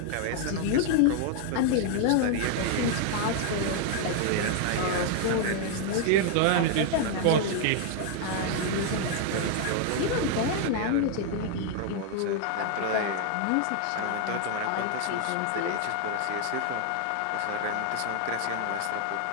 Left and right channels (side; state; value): both; different; correlation 0.00